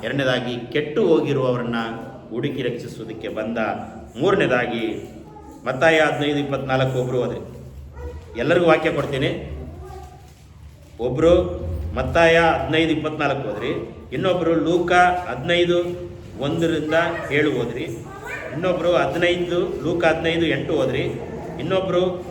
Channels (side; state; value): both; identical; correlation 1.00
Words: ಎರಡನೇದಾಗಿ ಕೆಟ್ಟು ಹೋಗಿರುವವರನ್ನ ಹುಡುಕಿ ರಕ್ಷಿಸುವುದಕ್ಕೆ ಬಂದ. ಮೂರನೇದಾಗಿ ಮತ್ತಾಯ 15:24 ಒಬ್ಬರು ಹೋದರೆ, ಎಲ್ಲರಿಗೂ ವಾಕ್ಯ ಕೊಡ್ತೀನಿ. ಒಬ್ಬರು ಮತ್ತಾಯ 15:24 ಹೋದ್ರಿ, ಇನ್ನೊಬ್ಬರು ಲೂಕ 15:1-7 ಹೋದ್ರಿ, ಇನ್ನೊಬ್ಬರು 15 ಲೂಕ 15:8 ಹೋದ್ರಿ, ಇನ್ನೊಬ್ಬರು